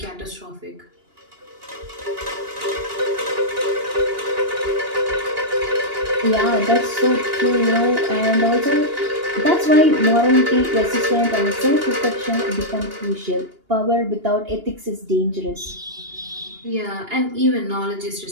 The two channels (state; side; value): late; left; 2.8 ms